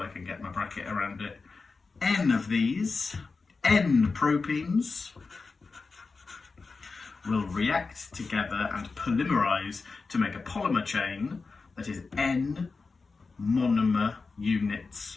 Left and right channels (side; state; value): right; quieter; 4.3 dB